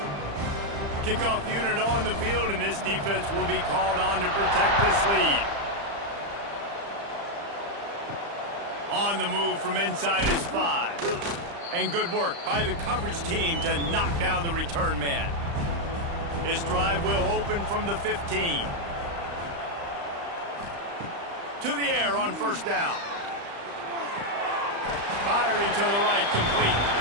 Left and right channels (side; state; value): left; late; 35 ms